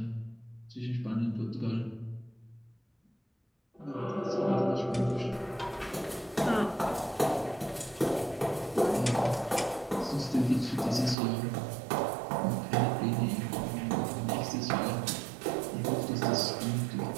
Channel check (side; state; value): left; drops out; at 11.2 s